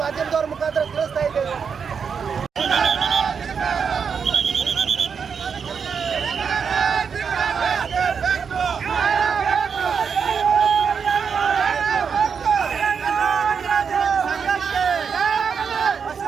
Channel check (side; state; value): left; quieter; 6.4 dB